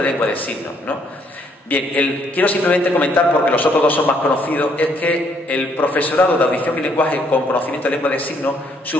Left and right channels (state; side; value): normal; both; correlation 0.68